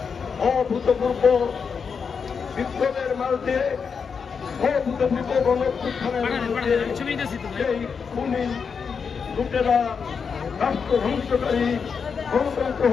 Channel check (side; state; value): right; quieter; 6.0 dB